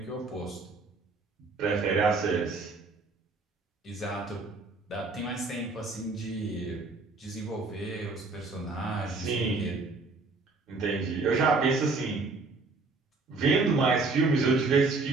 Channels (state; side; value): quieter; left; 3.7 dB